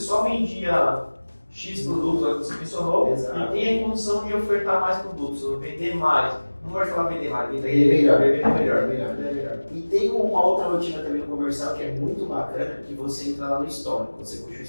vendia X produtos, que você mencionou, e tem a condição de ofertar mais produtos, ou vender mais. Não pode falar vender mais, vender melhor. E tem uma outra rotina também no comercial que é muito bacana, que você entra lá no histórico. Você puxa o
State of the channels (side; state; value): both; inverted; correlation -1.00